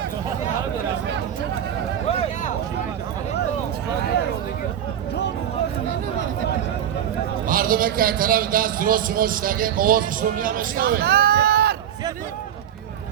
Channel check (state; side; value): quieter; left; 9.9 dB